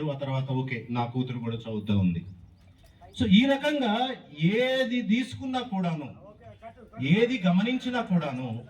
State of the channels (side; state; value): both; identical; correlation 1.00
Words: ఆ తర్వాత ఓకే, నా కూతురు కూడా చదువుతూ ఉంది. సో ఈ రకంగా ఏది తీసుకున్నా కూడాను, ఏది గమనించినా కూడాను